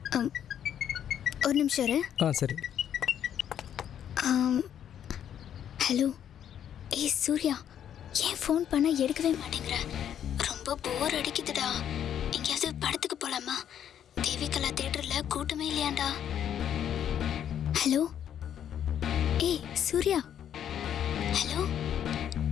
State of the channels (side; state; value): right; quieter; 9.7 dB